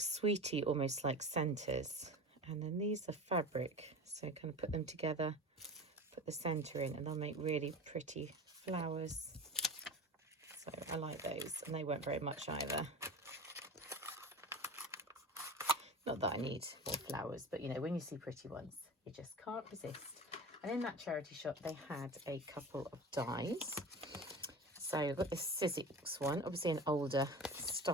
almost like centres. And then these are fabric. So kind of put them together, put the centre in, and they'll make really pretty flowers. So I like those, and they weren't very much either. Not that I need more flowers, but you know, when you see pretty ones, you just can't resist. And in that charity shop, they had a couple of dies. So I've got this Sizzix one, obviously an older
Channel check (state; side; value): normal; both; correlation 0.32